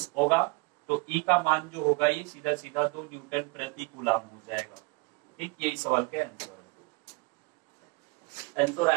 होगा। तो ई का मान जो होगा ये सीधा सीधा 2 न्यूटन प्रति कूलाम हो जाएगा। ठीक, यही सवाल का आंसर है। आंसर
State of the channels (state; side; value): quieter; left; 29.1 dB